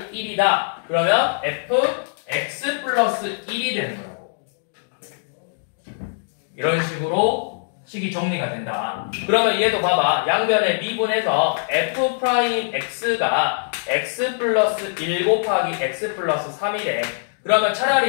1이다. 그러면 fx 플러스 1이 되는 거라고. 이런 식으로 식이 정리가 된다. 그러면 얘도 봐봐. 양변에 미분해서 f 프라임 x가 x 플러스 1 곱하기 x 플러스 3이래. 그러면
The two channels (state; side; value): silent; right; digital silence